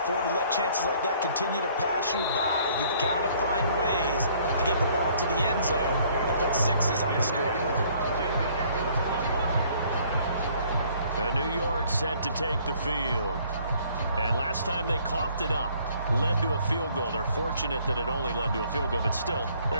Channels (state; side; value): inverted; both; correlation -0.60